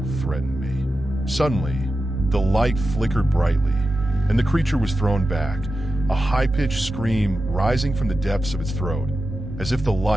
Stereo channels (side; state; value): both; normal; correlation 0.92